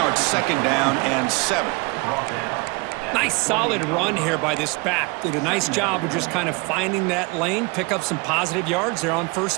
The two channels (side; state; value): left; quieter; 28.5 dB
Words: it's second down and 7. Nice solid run here by this back. Did a nice job of just kind of finding that lane, pick up some positive yards there on